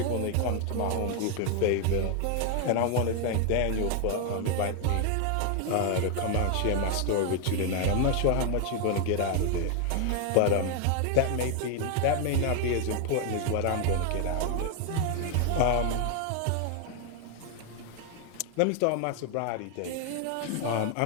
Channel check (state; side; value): different; both; correlation 0.01